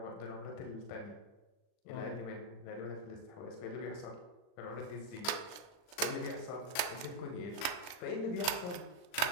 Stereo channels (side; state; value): right; late; 39 ms